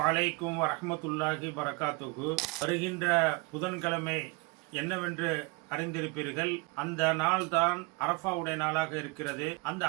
அலைக்கும் வரஹ்மத்துல்லாஹி பரகாத்துஹு. வருகின்ற புதன்கிழமை என்னவென்று அறிந்திருப்பீர்கள். அந்த நாள் தான் அரஃபாவுடைய நாளாக இருக்கிறது. அந்த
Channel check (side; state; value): left; quieter; 27.5 dB